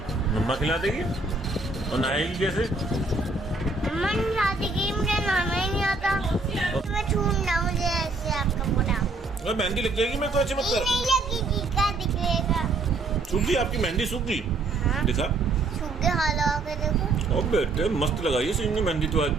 मम्मा खिला देगी? और नहाएगी कैसे? मम्मा खिला देगी, मुझे नहाना ही नहीं आता। मैं छूना, मुझे ऐसे आपका पूरा। अरे मेहंदी लग जाएगी, मैं तो ऐसे मत ये कर। नहीं लगेगी, क्या दिखेगा? सूख गई आपकी मेहंदी, सूख गई। हाँ। दिखा। सूख के हाल लगा के देखो। ओ बेटे मस्त लगाई है सीनू ने मेहंदी तो आज।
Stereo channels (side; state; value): left; quieter; 3.5 dB